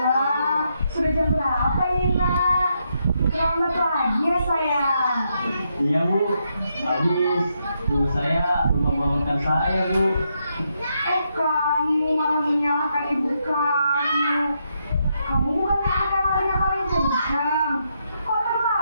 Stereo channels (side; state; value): both; inverted; correlation -0.80